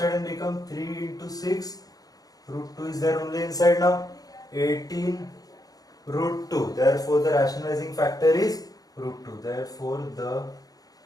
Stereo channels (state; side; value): late; right; 0.18 ms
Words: and become 3 into 6, root 2 is there only inside now, 18 root 2. Therefore, the rationalizing factor is root 2. Therefore, the